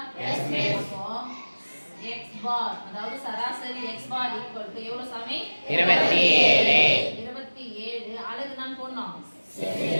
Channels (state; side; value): inverted; both; correlation -1.00